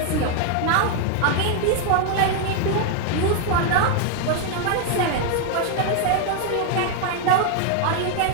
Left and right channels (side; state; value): both; different; correlation 0.00